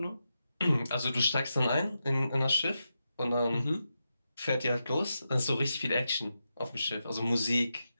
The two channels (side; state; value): both; inverted; correlation -0.88